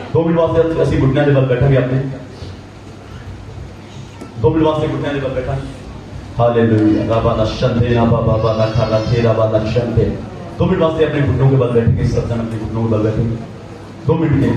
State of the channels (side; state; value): both; identical; correlation 1.00